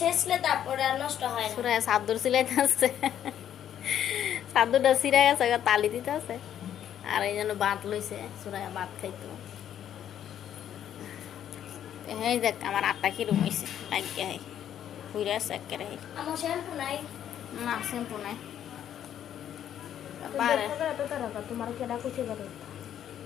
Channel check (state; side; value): quieter; right; 10.2 dB